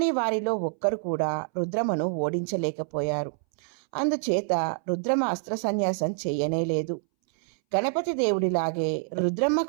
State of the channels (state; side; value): silent; left; 60 dB below the other